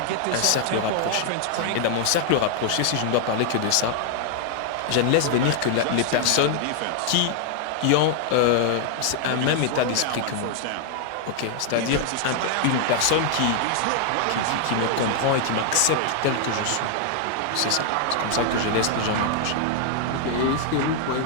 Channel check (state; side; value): different; both; correlation 0.00